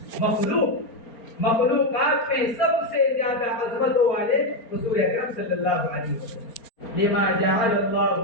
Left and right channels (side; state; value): right; late; 4.3 ms